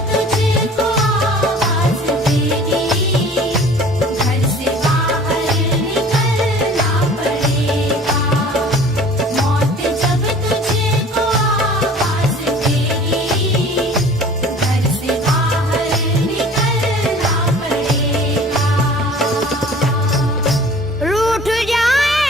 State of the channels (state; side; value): normal; both; correlation 0.47